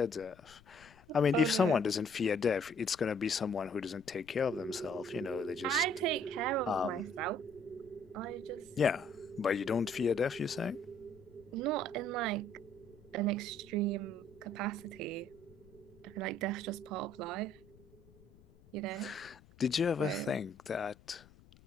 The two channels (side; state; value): left; noise; rumble, 25 dB below the sound